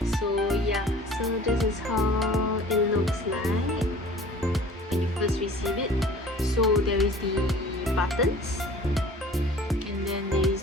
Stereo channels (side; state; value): both; normal; correlation 0.46